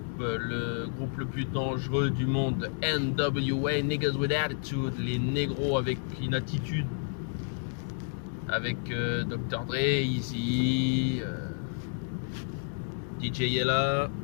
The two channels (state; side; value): silent; right; digital silence